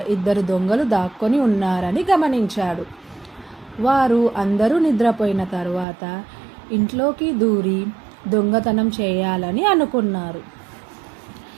ఇద్దరు దొంగలు దాక్కొని ఉన్నారని గమనించాడు. వారు అందరూ నిద్రపోయిన తర్వాత ఇంట్లోకి దూరి దొంగతనం చేయాలని అనుకున్నారు.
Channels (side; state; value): left; drops out; at 5.9 s